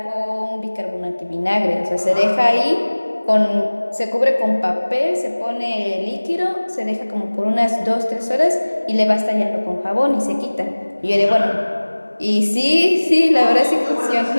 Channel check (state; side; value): inverted; both; correlation -1.00